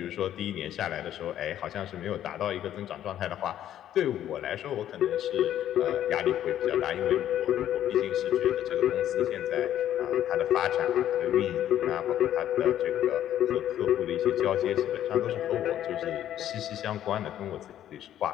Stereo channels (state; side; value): quieter; right; 11.4 dB